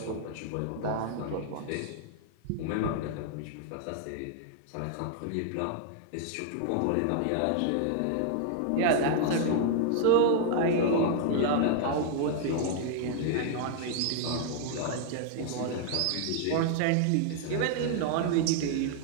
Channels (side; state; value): both; different; correlation 0.00